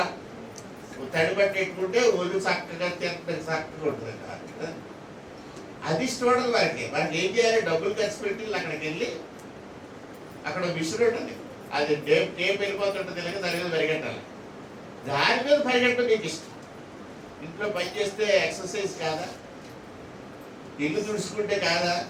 తడిపట్టేట్టుకుంటే ఒళ్ళు చక్కగా తింటే చక్కగా ఉంటుంది కదా. అది ఇష్టం ఉండదు మనకి. మనకి ఏం చేయాలి, డబ్బులు ఖర్చు పెట్టి అక్కడికి వెళ్ళి అక్కడ మిషన్ ఉంటుంది, అది టేప్ వెళ్ళిపోతుంటుంది ఇలాగ, దాని మీద పరిగెట్టాలి, దాని మీద పరిగెట్టడం నీకు ఇష్టం. ఇంట్లో పని చేస్తే ఎక్సర్సైజ్ కాదా, ఇల్లు తుడుచుకుంటే కాదా,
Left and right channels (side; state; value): both; identical; correlation 1.00